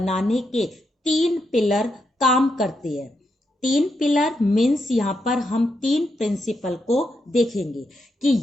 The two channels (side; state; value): both; normal; correlation 0.82